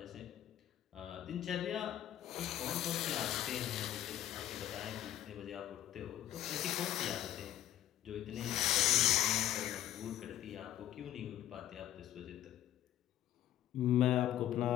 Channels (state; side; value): quieter; right; 12.3 dB